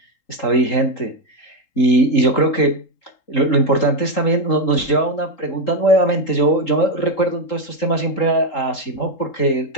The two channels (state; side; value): late; right; 3.8 ms